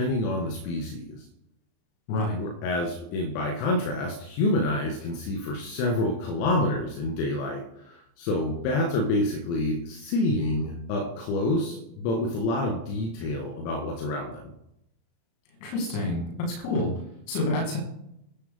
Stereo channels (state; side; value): late; right; 35 ms